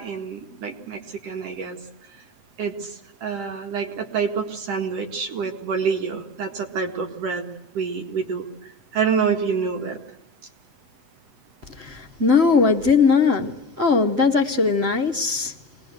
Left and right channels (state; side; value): late; left; 7.9 ms